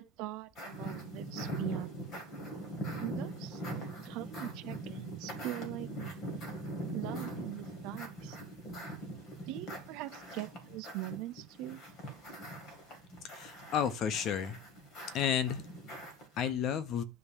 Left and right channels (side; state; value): both; normal; correlation 0.32